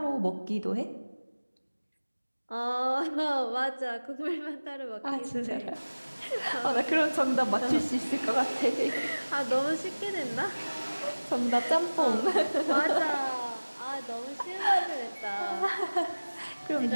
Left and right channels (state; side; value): inverted; both; correlation -1.00